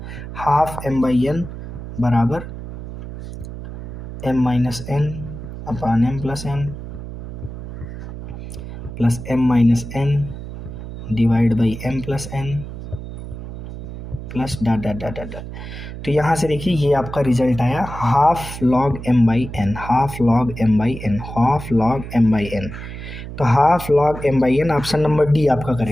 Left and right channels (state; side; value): noise; right; hum, 10 dB below the sound